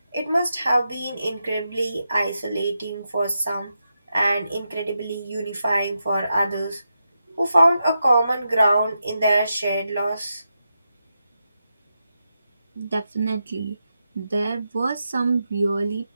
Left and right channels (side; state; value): both; inverted; correlation -0.87